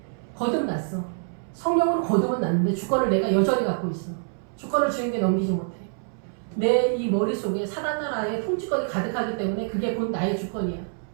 거듭났어. 성령으로 거듭은 났는데 주권을 내가 여전히 갖고 있어. 주권을 주인에게 넘기지 못해. 내 이 머릿속에 사단 나라의 통치권이 가득하기 때문에 그게 곧 나의 주권이야.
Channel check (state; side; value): silent; left; 61 dB below the other